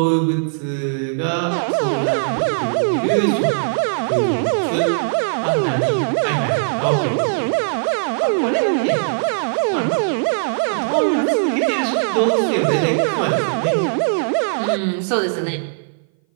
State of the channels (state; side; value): silent; left; 59 dB below the other